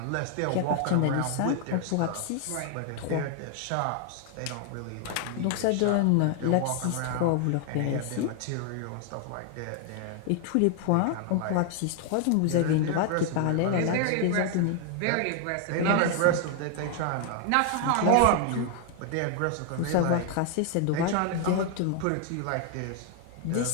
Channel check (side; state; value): both; different; correlation 0.00